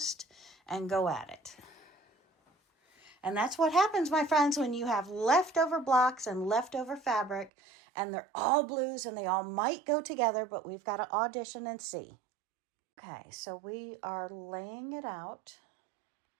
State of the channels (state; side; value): drops out; left; at 7.5 s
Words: and go at it. And that's what happens, my friends, when you have leftover blocks and leftover fabric, and they're all blues and they all might go together, but we've got to audition and see. Okay, so we are laying it out.